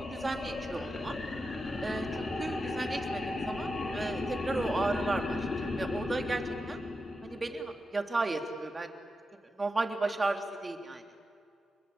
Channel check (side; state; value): both; normal; correlation 0.89